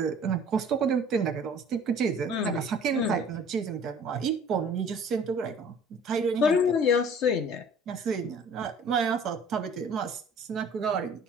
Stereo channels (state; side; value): normal; both; correlation 0.49